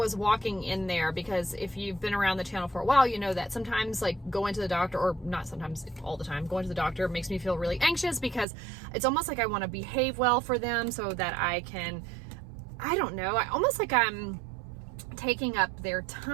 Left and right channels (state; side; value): drops out; left; at 8.5 s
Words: walking in there, because if you've been around the channel for a while, you know that sometimes like going to the doctor, or not sometimes, all the time, going to the doctor makes me feel really anxious because it's almost like I want to behave well for them so that I can, I don't know, almost like I'm taking up their